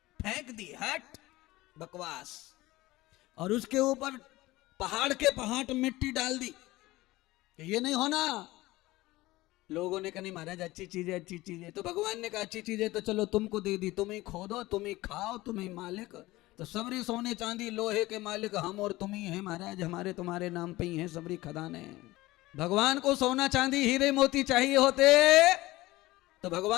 फेंक दी, हट बकवास। और उसके ऊपर पहाड़ के पहाड़ मिट्टी डाल दी, ये नहीं होना। लोगों ने कहा नहीं महाराज अच्छी चीज है, अच्छी चीज है। तो भगवान ने कहा अच्छी चीज है तो चलो तुमको दे दी, तुम ही खोदो, तुम ही खाओ, तुम ही मालिक। तो सबरी सोने चांदी लोहे के मालिक हम और तुम ही है महाराज, हमारे तुम्हारे नाम पे ही है सबरी खदाने। भगवान को सोना चांदी हीरे मोती चाहिए होते तो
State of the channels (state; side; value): quieter; right; 18.7 dB